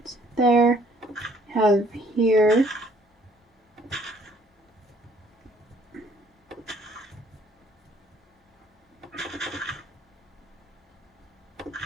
there. Have here.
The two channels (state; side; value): normal; both; correlation 0.61